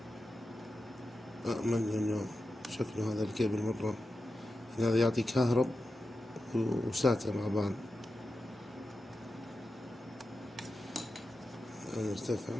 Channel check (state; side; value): normal; both; correlation 0.91